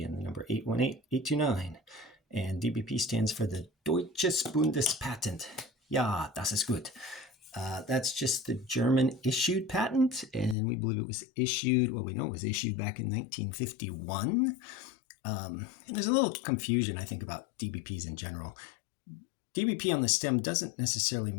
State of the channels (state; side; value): drops out; right; at 10.6 s